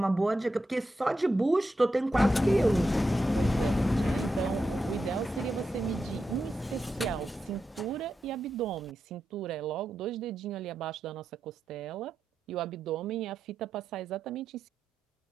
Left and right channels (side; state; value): both; normal; correlation 0.88